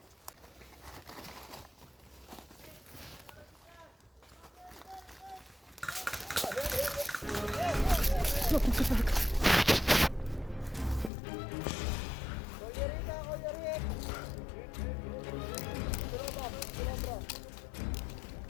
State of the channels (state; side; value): drops out; right; at 11.1 s